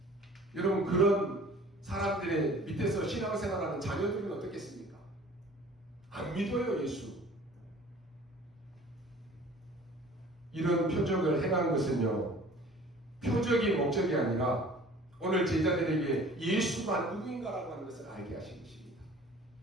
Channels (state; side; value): normal; both; correlation 0.48